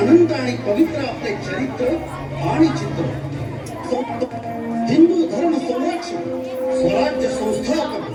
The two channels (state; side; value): identical; both; correlation 1.00